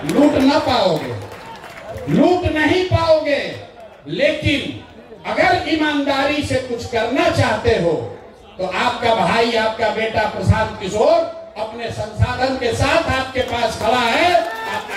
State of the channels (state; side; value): identical; both; correlation 1.00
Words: लूट न पाओगे, लूट नहीं पाओगे, लेकिन अगर ईमानदारी से कुछ करना चाहते हो तो आपका भाई, आपका बेटा प्रशांत किशोर अपने संसाधन के साथ आपके पास खड़ा है। आप